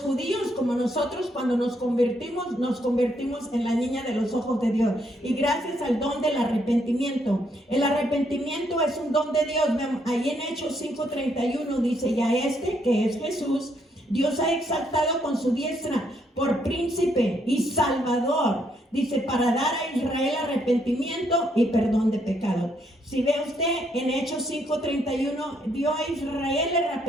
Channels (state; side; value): normal; both; correlation 0.73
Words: judíos como nosotros cuando nos convertimos en la niña de los ojos de Dios. Y gracias al don del arrepentimiento. El arrepentimiento es un don de Dios. Ahí en Hechos 5:31 dice, y a este que es Jesús, Dios ha exaltado con su diestra por príncipe y salvador, dice, para dar a Israel arrepentimiento y perdón de pecados. Si ve usted en Hechos 5:31, dio a Israel el